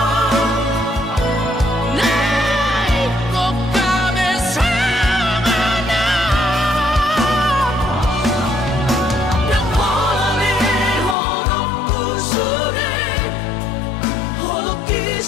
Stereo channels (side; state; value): right; drops out; at 11.2 s